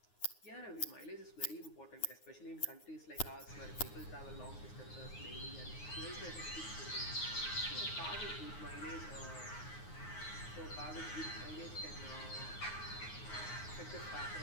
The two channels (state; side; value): late; right; 9.5 ms